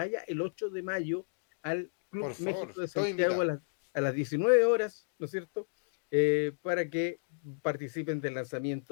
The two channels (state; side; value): silent; right; digital silence